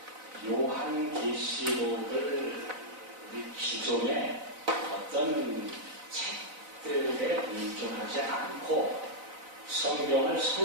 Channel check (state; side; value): late; left; 4.0 ms